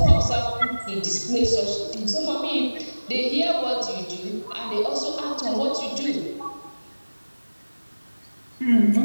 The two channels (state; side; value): inverted; both; correlation -1.00